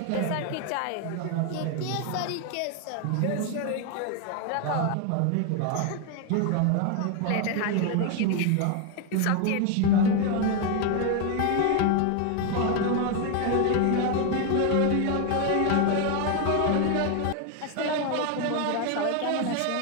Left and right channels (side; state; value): both; different; correlation 0.01